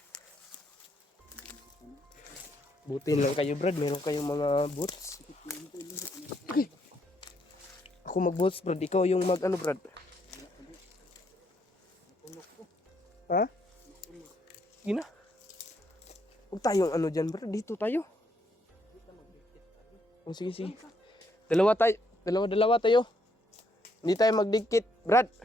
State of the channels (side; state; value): both; normal; correlation 0.73